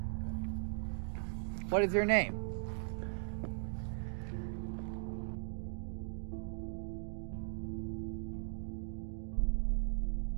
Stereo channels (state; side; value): silent; left; digital silence